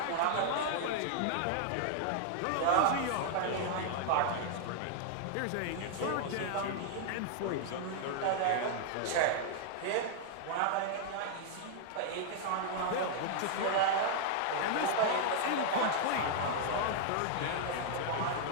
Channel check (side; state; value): both; different; correlation -0.01